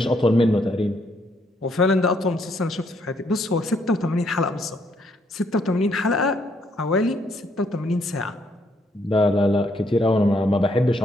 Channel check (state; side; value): normal; both; correlation 0.71